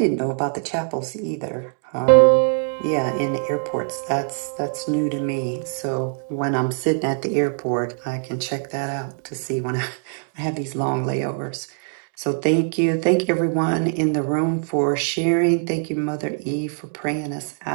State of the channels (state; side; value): silent; left; 62 dB below the other